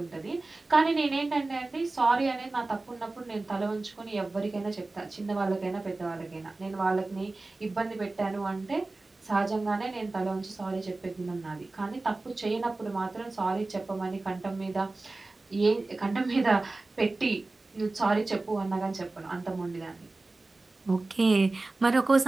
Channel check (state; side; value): quieter; left; 3.2 dB